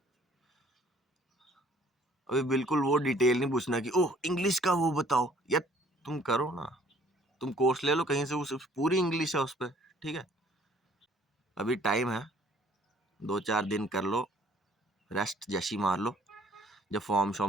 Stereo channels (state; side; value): normal; both; correlation 0.58